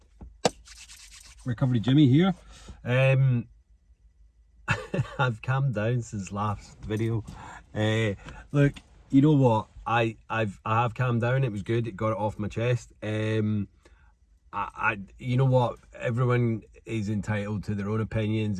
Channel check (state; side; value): identical; both; correlation 1.00